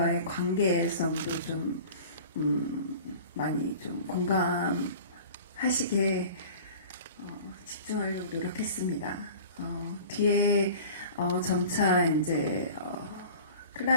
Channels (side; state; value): both; inverted; correlation -0.41